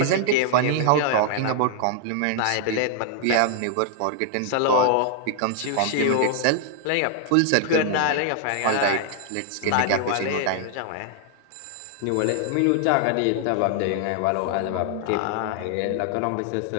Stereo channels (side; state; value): both; different; correlation 0.00